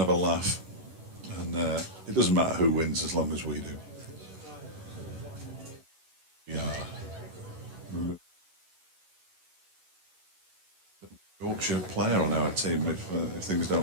have a laugh. And it doesn't matter who wins as long as we do. Yeah. Yorkshire player on our team if things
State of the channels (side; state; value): left; late; 11 ms